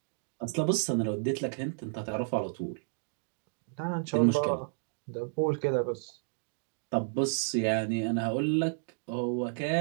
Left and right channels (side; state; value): left; silent; digital silence